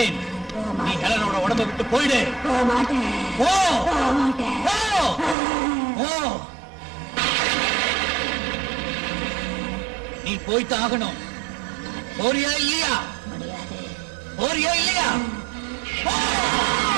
நீ ஹெலனோட உடம்ப விட்டு போயிடு. போக மாட்டேன். போ. போக மாட்டேன். போ. போ. நீ போய்த்தான் ஆகணும். போறியா இல்லையா? முடியாது. போறியா இல்லையா? போ.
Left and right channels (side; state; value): left; drops out; at 5.4 s